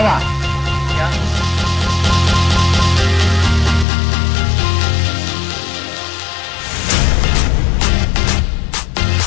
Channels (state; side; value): drops out; right; at 3.9 s